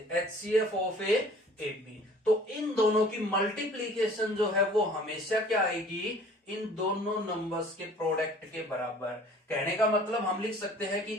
एचसीएफ ऑफ ए बी। तो इन दोनों की मल्टीप्लीकेशन जो है वो हमेशा क्या आएगी, इन दोनों नंबर्स के प्रोडक्ट के बराबर। कहने का मतलब हम लिख सकते हैं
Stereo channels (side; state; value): both; normal; correlation 0.50